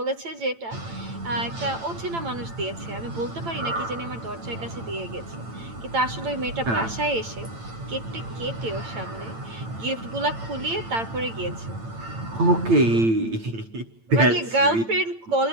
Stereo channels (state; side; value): late; left; 8.9 ms